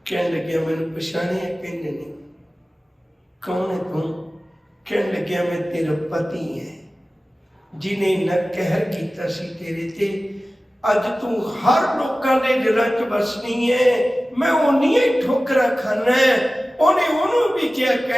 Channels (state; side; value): normal; both; correlation 0.96